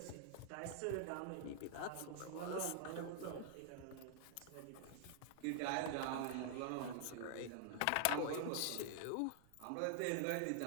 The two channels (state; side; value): different; both; correlation 0.00